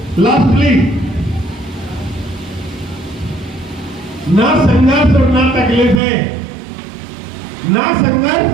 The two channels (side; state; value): left; drops out; at 6.0 s